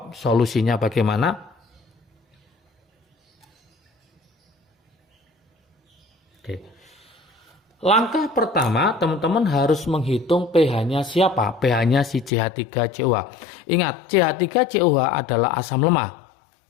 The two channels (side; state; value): right; drops out; at 12.3 s